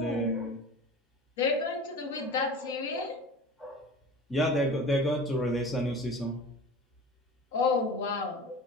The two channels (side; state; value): both; normal; correlation 0.36